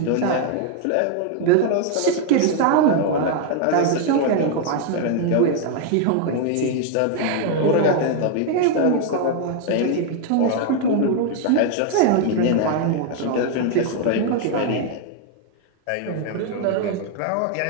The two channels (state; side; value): different; both; correlation 0.00